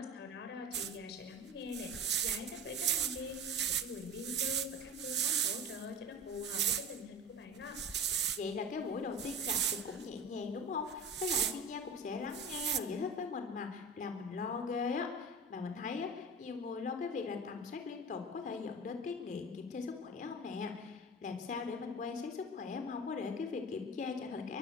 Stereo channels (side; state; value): both; normal; correlation 0.33